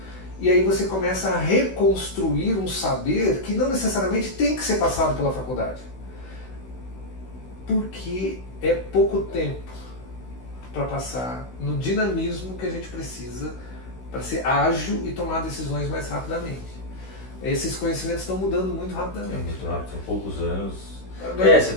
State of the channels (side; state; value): right; late; 16 ms